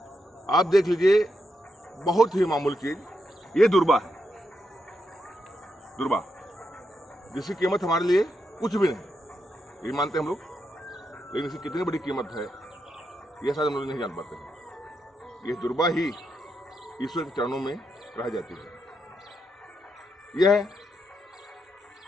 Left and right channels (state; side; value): normal; both; correlation 0.83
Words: आप देख लीजिए, बहुत ही मामूली चीज ये दुर्बा है, दुर्बा जिसकी कीमत हमारे लिए कुछ भी नहीं, ये मानते हैं हम लोग, लेकिन इसकी कितनी बड़ी कीमत है यह शायद हम लोग नहीं जान पाते हैं। यह दुर्बा ही ईश्वर के चरणों में रह जाती है। यह